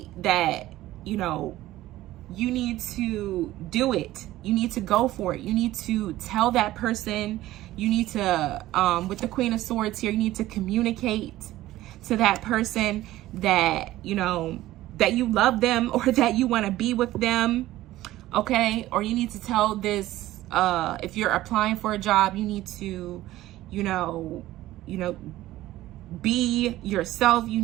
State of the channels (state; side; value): quieter; left; 15.7 dB